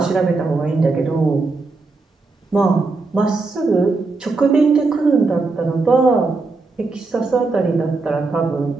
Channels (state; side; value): quieter; left; 3.8 dB